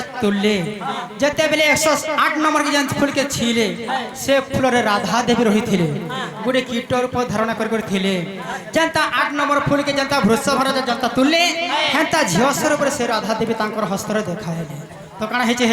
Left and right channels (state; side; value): identical; both; correlation 1.00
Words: তুললে যেতেবেলে 108 নম্বর के যেন ফুলকে ছিলে সে ফুলরে রাধা দেবী রহিଥିଲେ গোটে কীট রূপ ধারণা করে ଥିଲେ যেনতা 8 নম্বর ফুলকে যেনতা বৃষভর যেনতা তুললে হেনতা ঝিও স্বরূপে সে রাধা দেবী তাঙ্কর হস্তরে দেখাইলে তো কাଣା হেছে